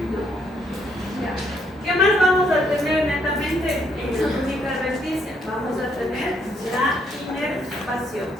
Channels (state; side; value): normal; both; correlation 0.71